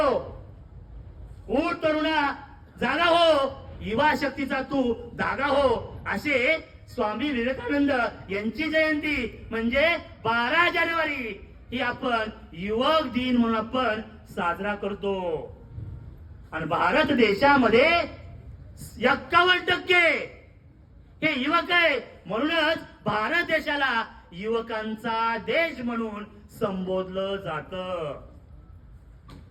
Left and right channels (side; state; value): both; identical; correlation 1.00